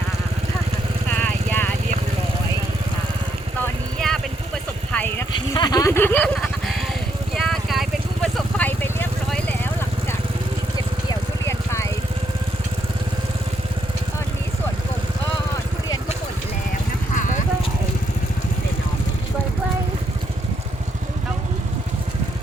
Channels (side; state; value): both; normal; correlation 0.76